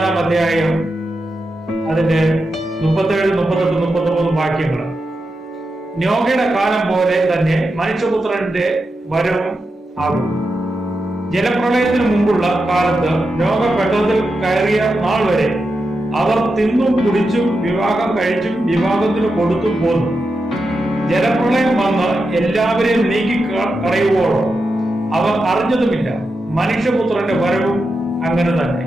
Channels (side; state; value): both; normal; correlation 0.88